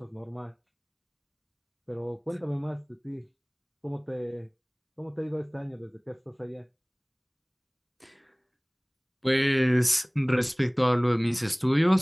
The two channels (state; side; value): identical; both; correlation 1.00